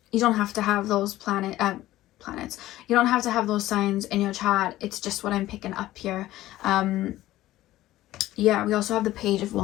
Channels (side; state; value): right; quieter; 15.4 dB